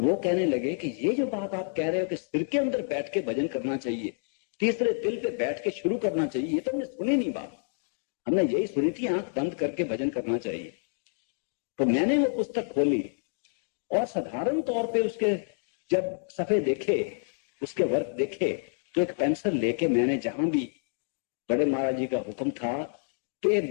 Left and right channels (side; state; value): right; silent; digital silence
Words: वो कहने लगे कि ये जो बात आप कह रहे हो कि सिर के अंदर बैठ के भजन करना चाहिए, तीसरे दिल पे बैठ के शुरू करना चाहिए, ये तो हमने सुनी नहीं बात। हमने यही सुनी थी आंख बंद करके भजन करना चाहिए। तो मैंने वो पुस्तक खोली और साधारण तौर पे उसके जब सफे देखे, उसके वर्क देखे, तो एक पेंसिल लेके मैंने जहां भी बड़े महाराज जी का हुक्म था कि